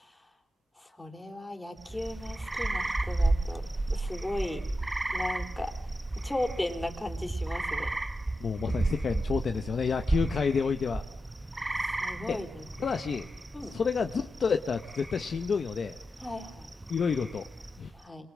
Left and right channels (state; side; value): normal; both; correlation 0.90